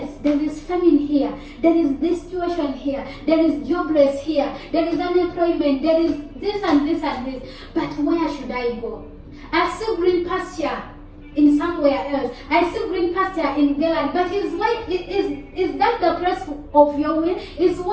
there is famine here, there is this situation here, there is jobless here, there is unemployment, there is this and this and this, but where should I go? I see green pasture in somewhere else. I see green pasture in Galilee, but is that the place of your will? Is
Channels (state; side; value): identical; both; correlation 1.00